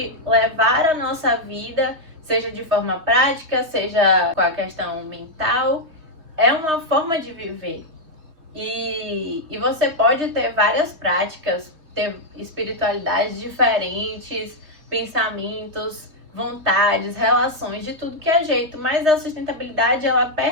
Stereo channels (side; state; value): left; late; 3.2 ms